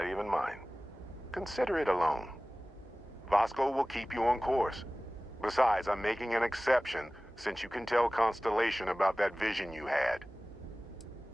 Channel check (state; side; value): normal; both; correlation 0.98